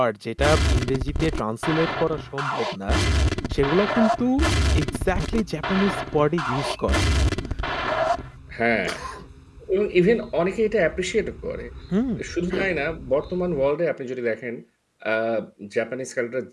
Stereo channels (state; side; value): identical; both; correlation 1.00